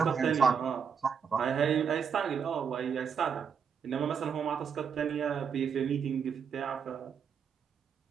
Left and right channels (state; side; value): quieter; left; 6.9 dB